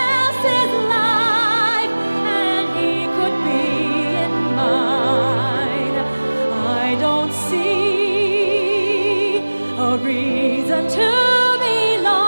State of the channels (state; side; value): inverted; both; correlation -1.00